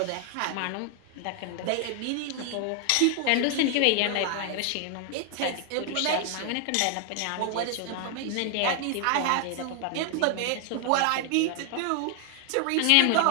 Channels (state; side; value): different; both; correlation 0.00